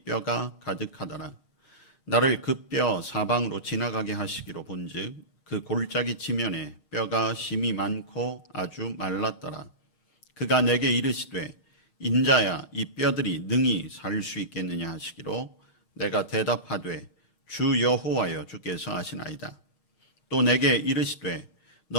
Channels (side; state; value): right; late; 6.4 ms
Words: 뼈가 가득하더라. 나를 그 뼈 사방으로 지나가게 하시기로 본즉 그 골짜기 지면에 뼈가 심이 많고 아주 말랐더라. 그가 내게 이르시되 인자야 이 뼈들이 능히 살 수 있겠느냐 하시기로 내가 대답하되 주 여호와여 주께서 하시나이다. 또 내게 이르시되